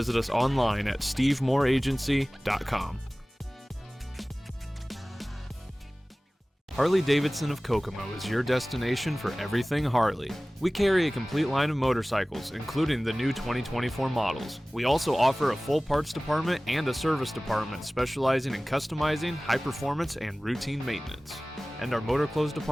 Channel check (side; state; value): both; normal; correlation 0.98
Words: us online at stevemooreagency.com. Harley-Davidson of Kokomo is your destination for everything Harley. We carry a complete line of motorcycles, including the new 2024 models. We also offer a full parts department and a service department specializing in customizing, high performance, and routine maintenance. And our motor clothes